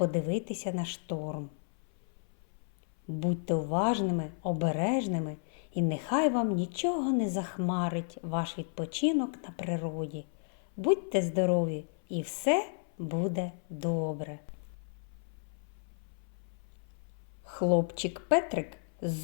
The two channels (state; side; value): silent; right; 56 dB below the other